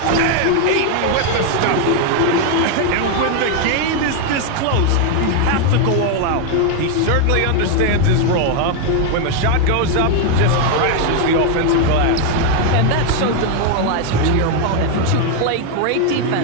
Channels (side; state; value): both; different; correlation 0.01